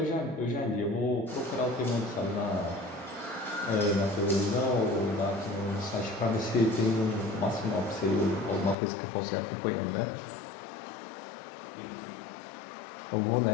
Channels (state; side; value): drops out; right; at 8.8 s